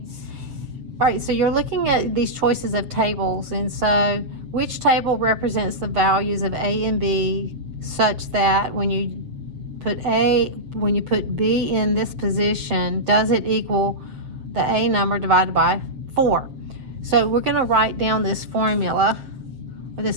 All right, so you're looking at these choices of tables, and so which table represents the values of A and B such that when you put B in this position, does it equal the A number divided by 4? So we're going to write down this formula or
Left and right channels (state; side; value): late; left; 7.5 ms